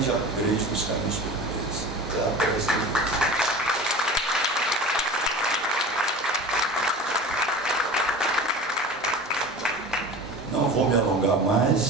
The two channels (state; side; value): normal; both; correlation 0.35